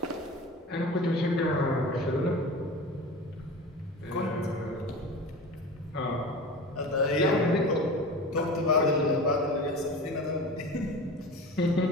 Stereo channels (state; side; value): normal; both; correlation 0.33